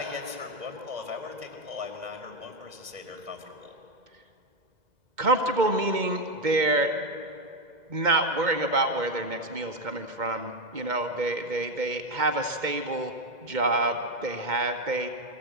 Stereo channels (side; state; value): left; late; 2.2 ms